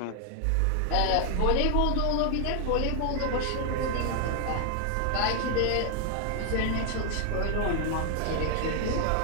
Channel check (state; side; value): different; both; correlation 0.00